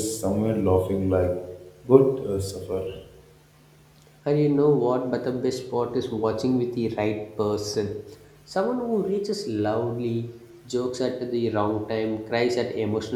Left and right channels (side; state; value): both; identical; correlation 1.00